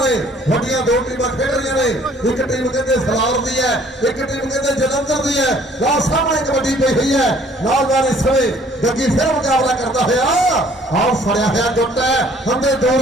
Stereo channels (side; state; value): both; normal; correlation 0.57